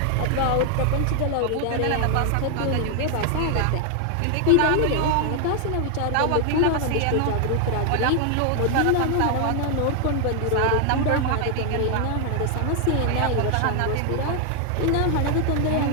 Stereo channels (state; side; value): different; both; correlation 0.00